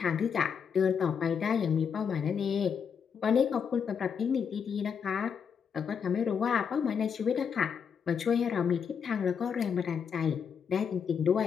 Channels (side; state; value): right; quieter; 6.9 dB